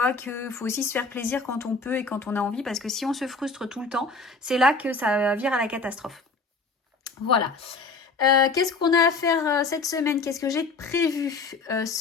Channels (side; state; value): right; quieter; 4.0 dB